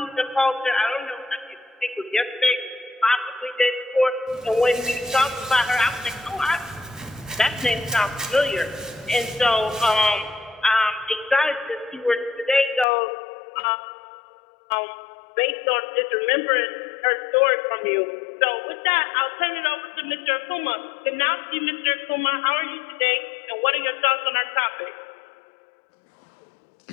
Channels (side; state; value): right; drops out; at 12.9 s